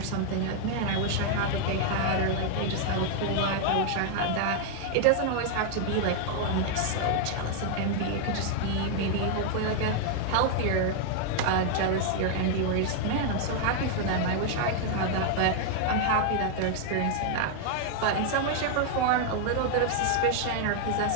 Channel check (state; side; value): different; both; correlation 0.00